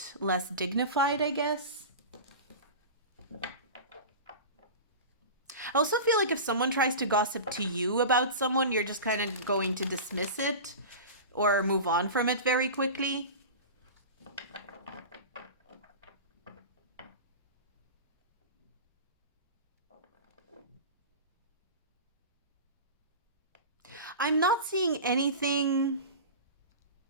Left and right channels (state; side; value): inverted; both; correlation -0.31